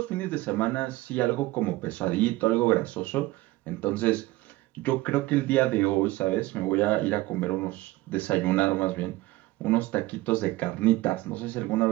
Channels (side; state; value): left; quieter; 18.7 dB